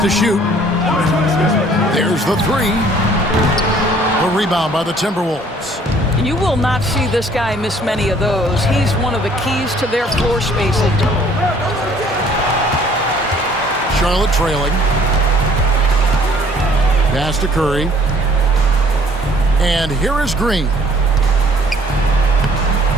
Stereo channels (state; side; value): normal; both; correlation 0.57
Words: shoot. There's the 3. A rebound by the Timberwolves. You will not see this guy miss many of those. He's one of the keys to their floor spacing. Charlotte trailing. Pass to Curry. And here is Green.